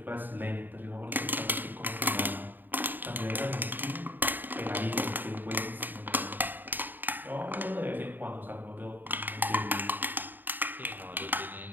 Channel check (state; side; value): late; left; 0.090 ms